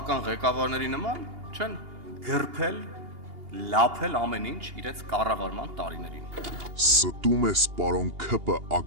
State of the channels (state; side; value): late; left; 2.8 ms